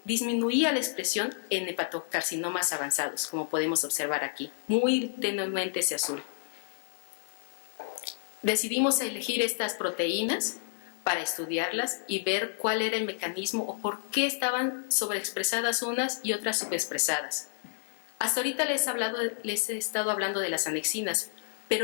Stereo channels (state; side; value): silent; right; digital silence